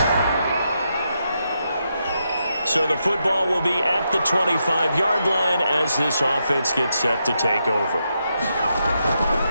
So the football will be at the 25-yard line as this offense gets set to take over.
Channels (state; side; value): inverted; both; correlation -0.83